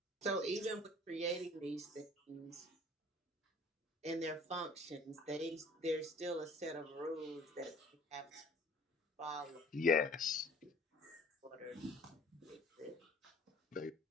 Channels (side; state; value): both; normal; correlation 0.50